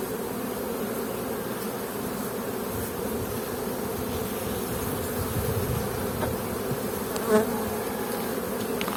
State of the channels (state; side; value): identical; both; correlation 1.00